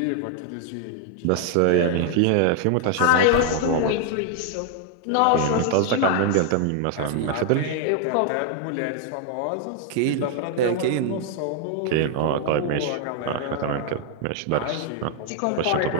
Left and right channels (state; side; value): different; both; correlation 0.00